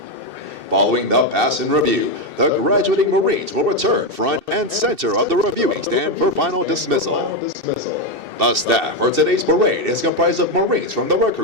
Following the pass and review, the graduating Marines will return front and center of the reviewing stand for final dismissal. The staff for today's parade is comprised of Marines from the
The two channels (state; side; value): late; left; 2.7 ms